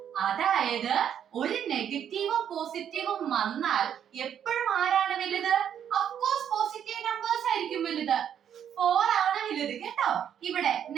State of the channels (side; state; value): left; quieter; 9.1 dB